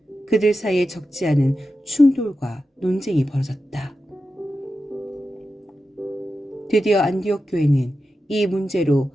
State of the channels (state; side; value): normal; both; correlation 0.91